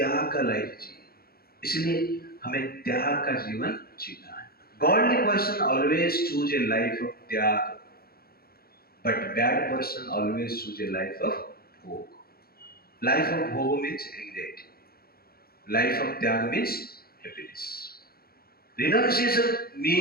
का लाइफ जी। इसलिए हमें त्याग का जीवन जीना है। Godly person always choose a life of त्याग, but bad person always choose a life of भोग। लाइफ ऑफ भोग मीन्स एंग्जाइटी, लाइफ ऑफ त्याग means happiness. Renunciation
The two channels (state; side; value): late; right; 0.44 ms